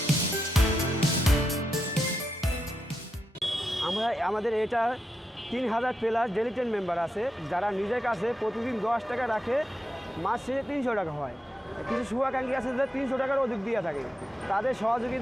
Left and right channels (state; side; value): normal; both; correlation 0.86